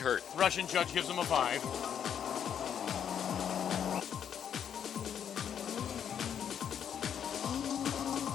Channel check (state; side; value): quieter; right; 8.6 dB